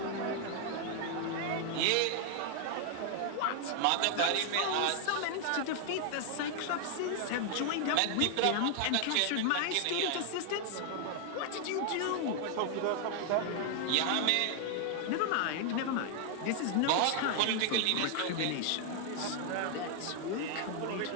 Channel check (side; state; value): both; different; correlation 0.00